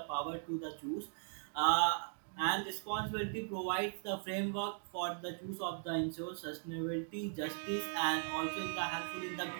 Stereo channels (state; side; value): silent; left; digital silence